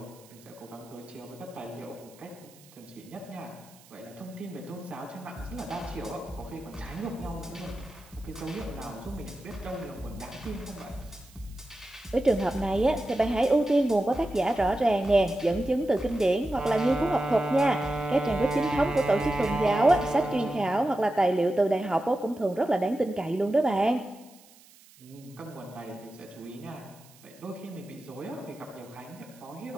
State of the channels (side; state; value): right; noise; hiss, 25 dB below the sound